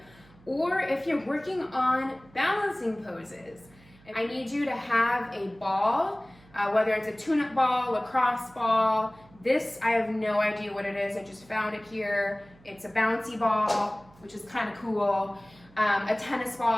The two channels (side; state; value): right; noise; hum, 26 dB below the sound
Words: or if you're working on balancing poses. I need you to have a ball, whether it's a tune-up ball, lacrosse ball. This, I have no idea what it is. I just found it here. It's a bouncy ball, which is kind of cool. A tennis